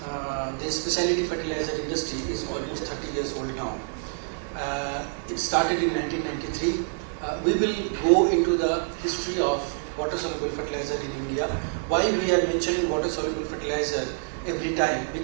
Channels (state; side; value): silent; left; digital silence